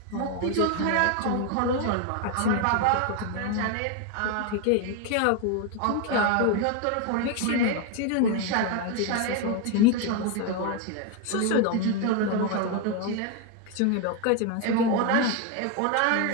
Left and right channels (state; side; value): different; both; correlation 0.01